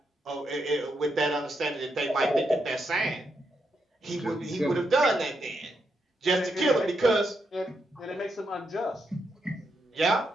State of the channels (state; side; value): normal; both; correlation 0.82